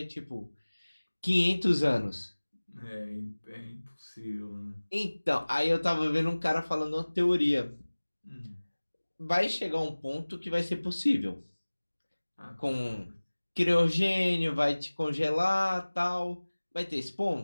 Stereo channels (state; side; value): inverted; both; correlation -1.00